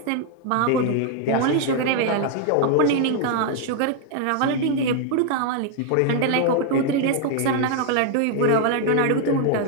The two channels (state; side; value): different; both; correlation 0.00